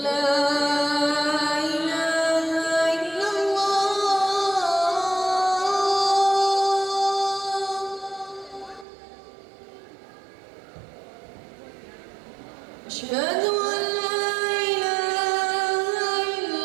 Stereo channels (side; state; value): left; drops out; at 8.8 s